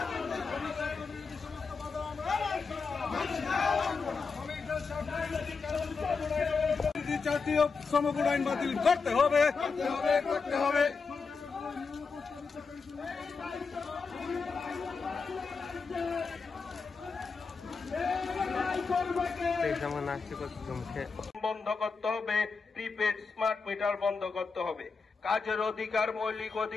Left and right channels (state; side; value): quieter; right; 4.9 dB